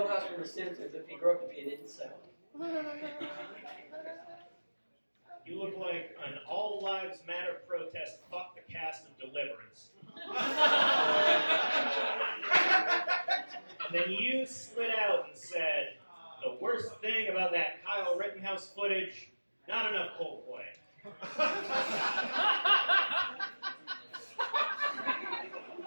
from The Simpsons if he grew up to be an incel. You look like an All Lives Matter protest, fuck the cast of Deliverance. And then you slid out and said, the worst thing about that Kyle Rittenhouse footage, not enough Coldplay.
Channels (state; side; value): inverted; both; correlation -1.00